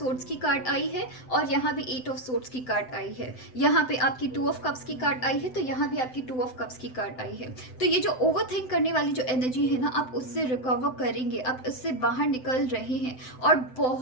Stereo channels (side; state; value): right; late; 7.8 ms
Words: की कार्ड आई है, और यहाँ भी 8 ऑफ सोर्ड्स की कार्ड आई है। यहाँ पे आपकी 2 ऑफ कप्स की कार्ड आई है, तो यहाँ भी आपकी 2 ऑफ कप्स की कार्ड आई है। तो ये जो ओवर थिंक करने वाली जो एनर्जी है ना, आप उससे रिकवर करेंगे, आप उससे बाहर निकल रहे हैं। और